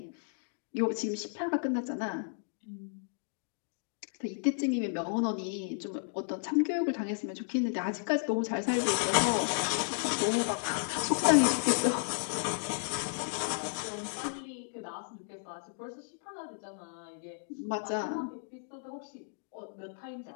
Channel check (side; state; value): right; silent; digital silence